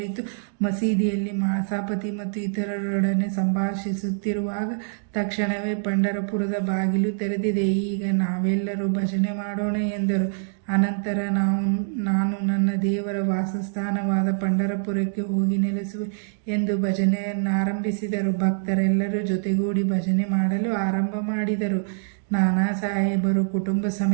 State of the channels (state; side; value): silent; left; digital silence